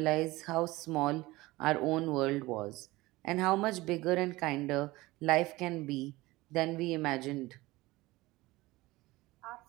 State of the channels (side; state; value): left; quieter; 19.9 dB